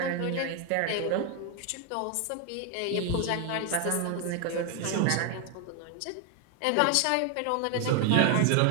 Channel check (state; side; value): different; both; correlation 0.01